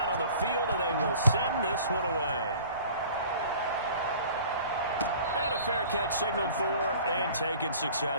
on the field, and they will send this one away. And a fair catch signaled for and taken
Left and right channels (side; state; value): both; inverted; correlation -0.47